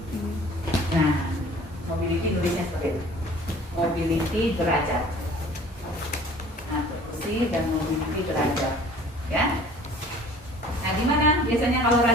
Nah mobility tulisnya seperti itu, mobility derajat. Nah perkusi dan mobility derajat ya. Nah di mana biasanya kalau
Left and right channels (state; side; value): normal; both; correlation 0.49